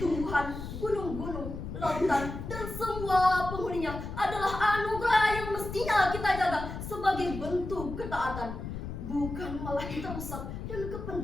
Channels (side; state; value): left; noise; rumble, 8 dB below the sound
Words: tumbuhan, gunung-gunung, lautan, dan semua penghuninya adalah anugerah yang mestinya kita jaga sebagai bentuk ketaatan, bukan malah kita rusak dan